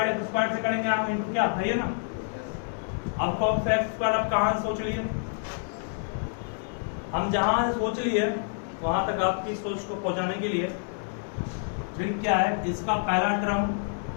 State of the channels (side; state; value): right; silent; digital silence